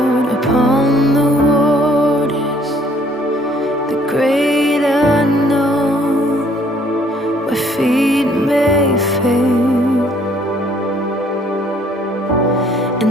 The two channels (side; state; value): both; normal; correlation 0.61